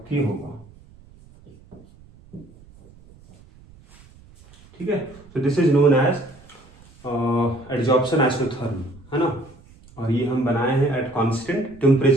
k होगा। ठीक है, तो this is known as adsorption isotherm, है ना, और ये हम बनाए हैं एट कांस्टेंट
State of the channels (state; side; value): noise; right; rumble, 25 dB below the sound